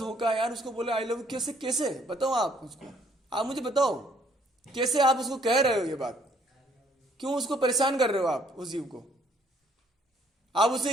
है यार। उसको बोले आई लव यू, कैसे कैसे बताओ आप उसको, आप मुझे बताओ कैसे आप उसको कह रहे हो ये बात? क्यों उसको परेशान कर रहे हो आप उस जीव को? आप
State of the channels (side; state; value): both; normal; correlation 0.64